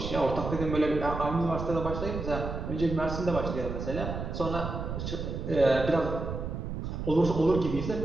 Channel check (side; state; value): right; noise; rumble, 5 dB below the sound